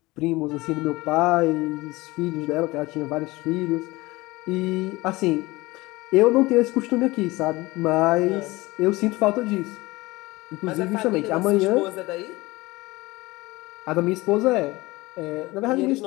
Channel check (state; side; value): quieter; right; 21.1 dB